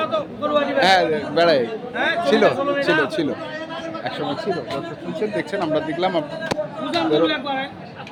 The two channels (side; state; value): both; identical; correlation 1.00